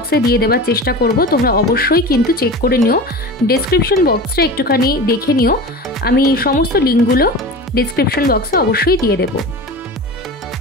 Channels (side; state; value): both; normal; correlation 0.32